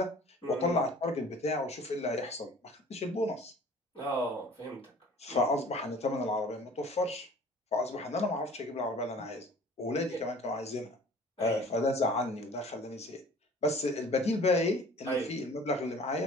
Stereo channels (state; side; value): normal; both; correlation 0.48